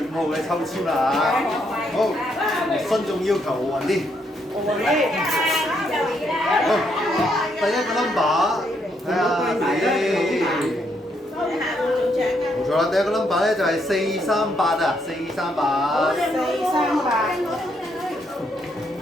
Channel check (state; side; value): normal; both; correlation 0.75